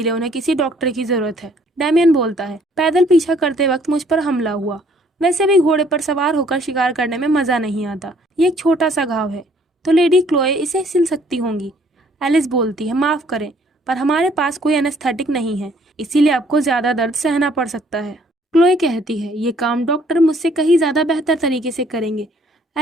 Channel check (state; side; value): normal; both; correlation 0.62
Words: उन्हें किसी डॉक्टर की जरूरत है। डैमियन बोलता है, पैदल पीछा करते वक्त मुझ पर हमला हुआ। वैसे भी घोड़े पर सवार होकर शिकार करने में मजा नहीं आता। ये एक छोटा सा घाव है, तो लेडी क्लोए इसे सिल सकती होंगी। एलिस बोलती है, माफ करें पर हमारे पास कोई एनेस्थेटिक नहीं है, इसीलिए आपको ज्यादा दर्द सहना पड़ सकता है। क्लोए कहती है, ये काम डॉक्टर मुझसे कहीं ज्यादा बेहतर तरीके से करेंगे।